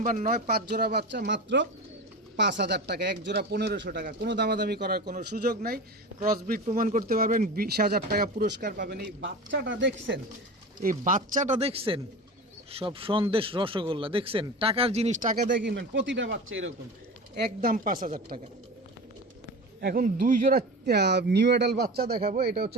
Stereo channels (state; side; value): normal; both; correlation 0.30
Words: 9, 5 জোড়া বাচ্চা, মাত্র 5000 টাকা। এক জোড়া 1500 টাকা। কোনো দামাদামি করার কোনো সুযোগ নাই। ক্রসব্রিড প্রমাণ করতে পারবেন, 20000 টাকা পুরস্কার পাবেন। এই বাচ্চাটা দেখছেন, এই বাচ্চাটা দেখছেন, সব সন্দেশ রসগোল্লা দেখছেন। টাকার জিনিস টাকা দিয়ে কিনবেন, প্রতিটা বাচ্চা এরকম, একদম 5000 টাকা। এখন 2 জোড়া নিউ অ্যাডাল্ট বাচ্চা দেখাবো। এটা